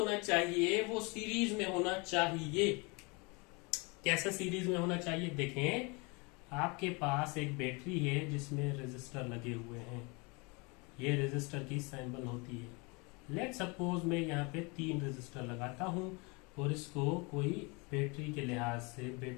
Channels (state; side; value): quieter; right; 29.2 dB